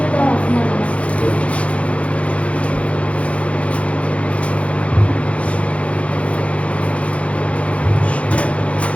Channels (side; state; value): right; late; 0.063 ms